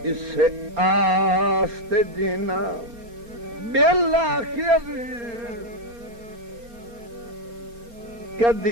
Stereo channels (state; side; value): late; left; 4.3 ms